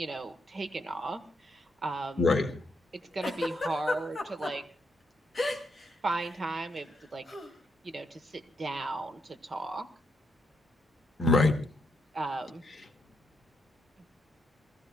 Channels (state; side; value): normal; both; correlation 0.78